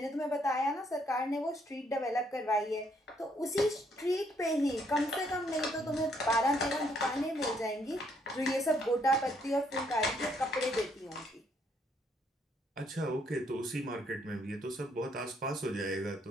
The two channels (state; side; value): normal; both; correlation 0.70